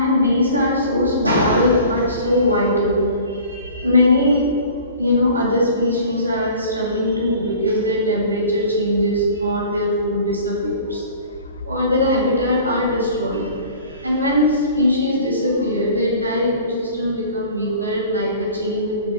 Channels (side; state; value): both; inverted; correlation -0.45